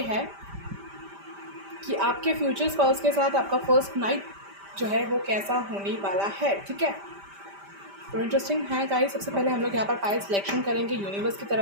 है कि आपके फ्यूचर स्पाउस के साथ आपका फर्स्ट नाइट जो है वो कैसा होने वाला है। ठीक है, तो इंटरेस्टिंग है गाइस। सबसे पहले हम लोग यहाँ पर पाइल सिलेक्शन करेंगे यूनिवर्स की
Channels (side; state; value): left; late; 5.1 ms